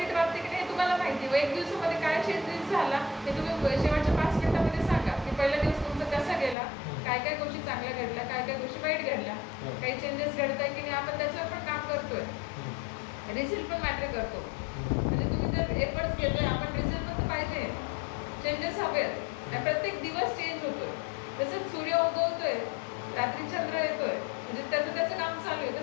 वाटते की नाही तुम्हाला माहिती. व 1 दिवसामध्ये काय चेंजेस झाला हे तुम्ही शेवटच्या 5 मिनिटांमध्ये सांगा की पहिला दिवस तुमचा कसा गेला, काय काय गोष्टी चांगल्या घडल्या, काय काय गोष्टी वाईट घडल्या, काही चेंजेस घडत आहे की नाही, आपण त्याच्यावर पण काम करतोय. रिझल्ट पण मॅटर करतो. म्हणजे तुम्ही जर एफर्ट्स घेतोय, आपण रिझल्ट पण पाहिजे, चेंजेस हवेत, आणि प्रत्येक दिवस चेंज होतोय. तसंच सूर्य उगवतोय, रात्री चंद्र येतोय, म्हणजे त्याचं काम चालू आहे,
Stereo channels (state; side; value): drops out; right; at 6.6 s